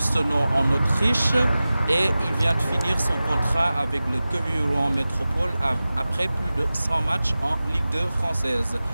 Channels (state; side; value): inverted; both; correlation -0.96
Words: en Autriche et il vient de finir son contrat avec le Quevilly-Rouen Métropole après plus de 100 matchs en Ligue 2 française.